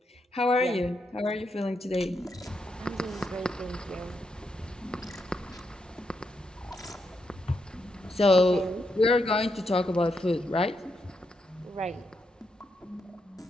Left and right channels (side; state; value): both; normal; correlation 0.82